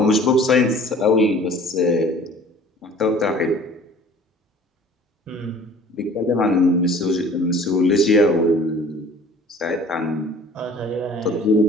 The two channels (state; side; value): normal; both; correlation 0.49